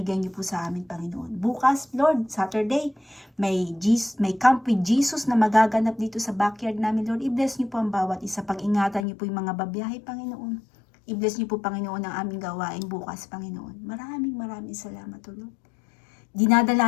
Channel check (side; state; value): right; drops out; at 9.1 s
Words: niyo po sa amin, Panginoon. Bukas, Lord, Saturday, may Camp with Jesus na magaganap dito sa backyard namin, Lord. I-bless niyo po ang bawat isa. Pag-ingatan niyo po yung mga babiyahe, Panginoon. I-bless niyo po, Panginoon, ang aming gawain bukas, Panginoon. Maraming salamat, O Lord.